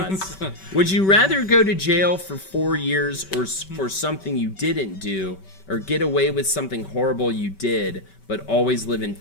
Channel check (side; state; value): right; late; 5.2 ms